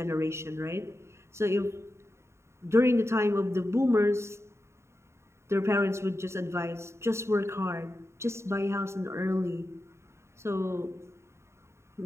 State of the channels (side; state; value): left; late; 0.13 ms